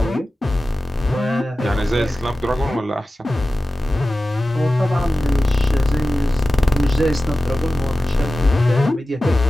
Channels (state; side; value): normal; both; correlation 0.95